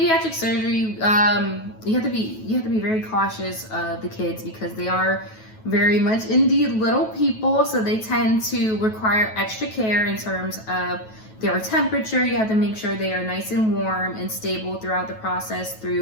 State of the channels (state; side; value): late; right; 9.2 ms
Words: surgery, you have to be very cautious of the kids because they are very much indeed little people. So they tend to require extra care in terms of their temperature. You have to make sure they are nice and warm and stable throughout the process